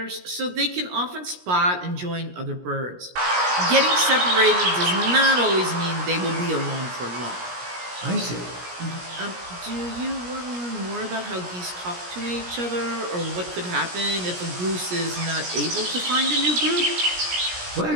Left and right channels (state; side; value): late; left; 17 ms